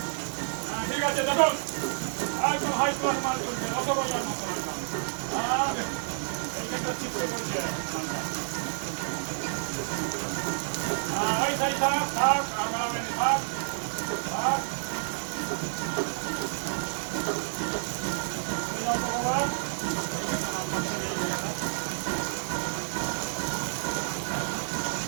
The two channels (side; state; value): left; silent; digital silence